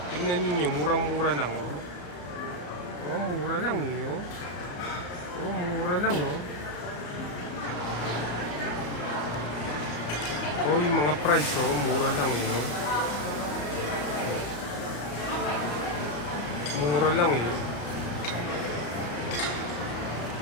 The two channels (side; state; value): right; late; 34 ms